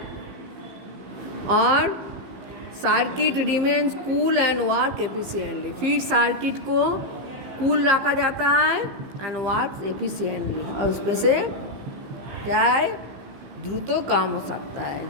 और circuit remains cool and work efficiently. फिर सर्किट को कूल रखा जाता है एंड वर्क एफिशिएंटली, और उसमें से क्या है, द्रुत काम हो सकता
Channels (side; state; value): left; late; 15 ms